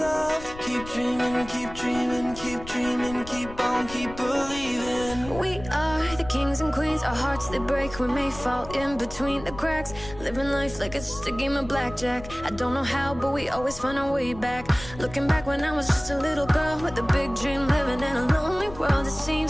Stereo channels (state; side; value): noise; left; rumble, 14 dB below the sound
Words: Keep dreaming, keep dreaming, keep dreaming, keep on, keep believing. We are the kings and queens, our hearts they break, we may fall in between the cracks. Living life like it's just a game of blackjack. I don't know how, but we always find our way back. Looking back when I was just a little girl with a big dream, living in a lonely world. It